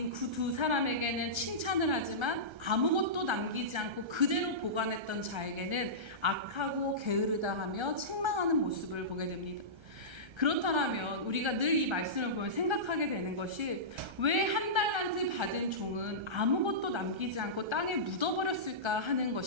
그 2사람에게는 칭찬을 하지만 아무것도 남기지 않고 그대로 보관했던 자에게는 악하고 게으르다 하며 책망하는 모습을 보게 됩니다. 그렇다면 우리가 늘 이 말씀을 보면 생각하게 되는 것이 왜 1달란트 받은 종은 아무것도 남기지 않고 땅에 묻어버렸을까 하는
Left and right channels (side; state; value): left; late; 1.3 ms